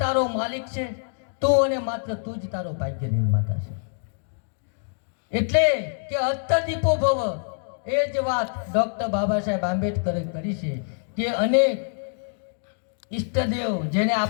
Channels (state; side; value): silent; right; digital silence